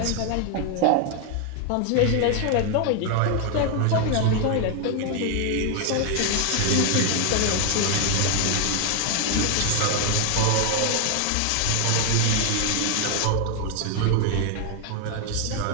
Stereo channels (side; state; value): both; different; correlation 0.00